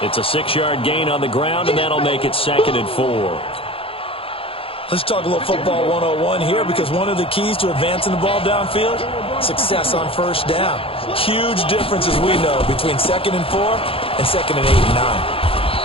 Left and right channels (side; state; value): right; late; 0.27 ms